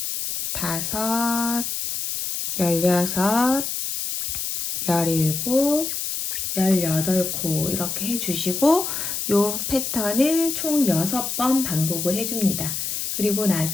다섯, 16, 17, 18코 이렇게 해주시고 이 패턴을 총 6번 반복을 해줍니다. 그리고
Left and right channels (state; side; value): noise; left; hiss, 3 dB below the sound